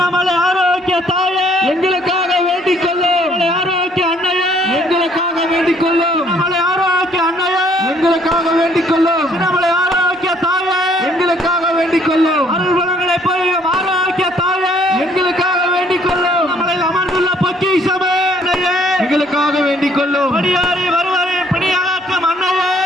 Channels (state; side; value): normal; both; correlation 0.63